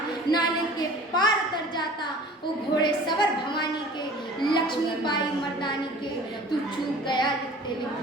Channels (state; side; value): normal; both; correlation 0.45